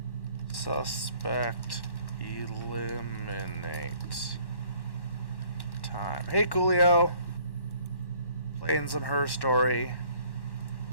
Suspect eliminate. Time. Hey, Coolio. Playing some Her Story.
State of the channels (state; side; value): late; right; 1.1 ms